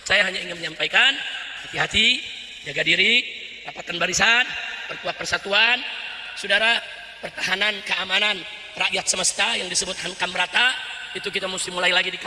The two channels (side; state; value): both; identical; correlation 1.00